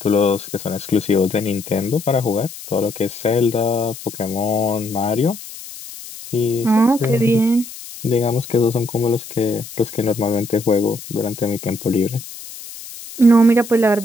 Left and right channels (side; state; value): left; noise; hiss, 14 dB below the sound